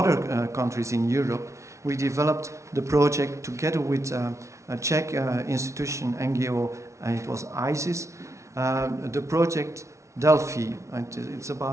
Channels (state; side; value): late; left; 0.14 ms